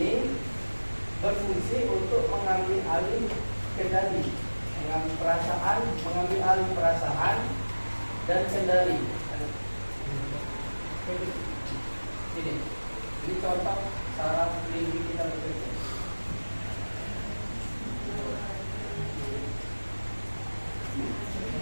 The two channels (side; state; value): both; inverted; correlation -1.00